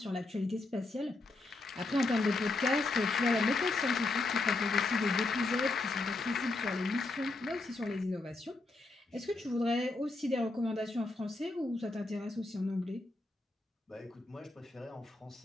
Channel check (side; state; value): right; quieter; 3.1 dB